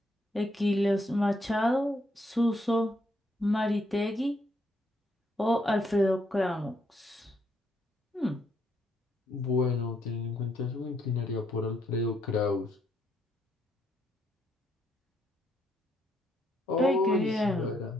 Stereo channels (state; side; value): normal; both; correlation 0.74